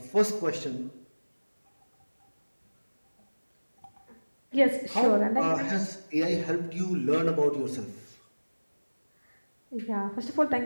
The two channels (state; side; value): inverted; both; correlation -1.00